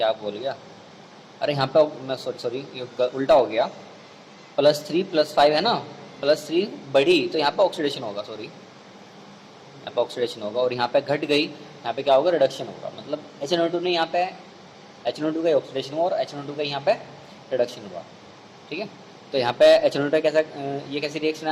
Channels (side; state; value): both; identical; correlation 1.00